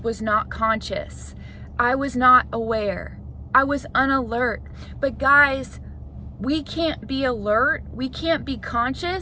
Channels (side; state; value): both; identical; correlation 1.00